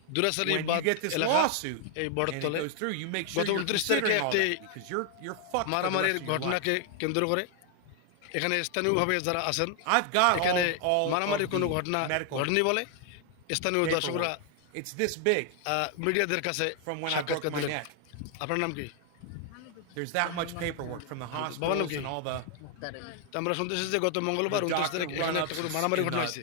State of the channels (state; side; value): different; both; correlation 0.00